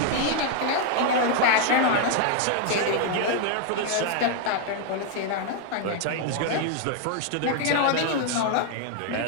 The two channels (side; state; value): both; different; correlation 0.00